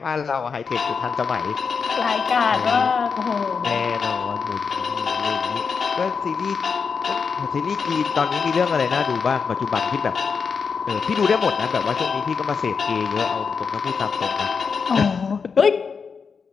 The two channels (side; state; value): right; quieter; 5.7 dB